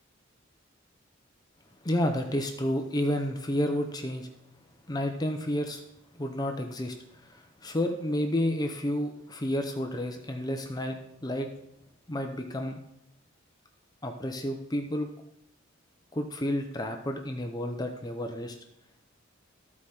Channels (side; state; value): both; normal; correlation 0.75